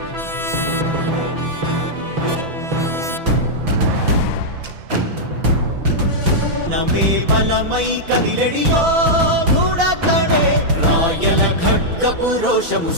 నమే బలమై కదిలెడియో గూడతడే రాయల ఖడ్గపు రోషము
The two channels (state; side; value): late; left; 6.0 ms